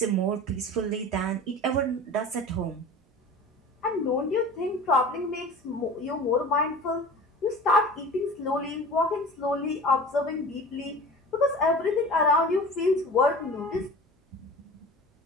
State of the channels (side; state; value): both; normal; correlation 0.38